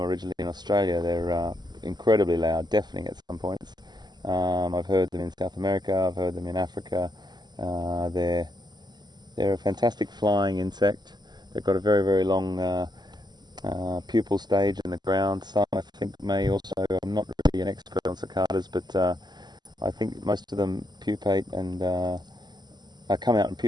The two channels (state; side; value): late; left; 0.21 ms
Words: originally in Australia. They're incredibly loud, deafening at some points. I've heard them in South America, I've heard them in Africa. They're a fantastic flying insect. They've got a very long pupal stage in the ground. Some I think may also, I'm not really an expert on cicadas, but I think most of them pupate and come out and